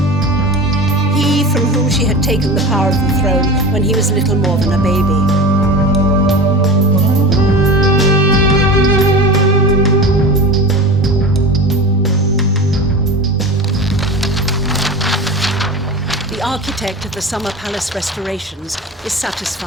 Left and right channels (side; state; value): both; normal; correlation 0.31